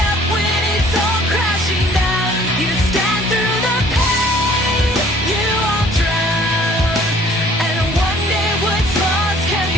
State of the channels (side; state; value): both; normal; correlation 0.55